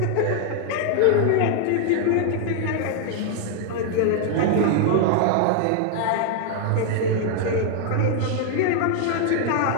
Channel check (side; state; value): both; different; correlation 0.00